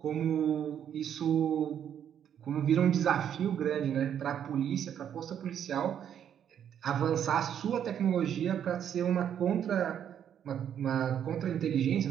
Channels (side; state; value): left; quieter; 9.2 dB